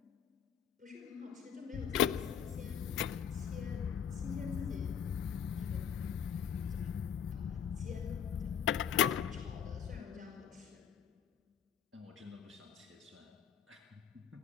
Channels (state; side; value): quieter; right; 8.0 dB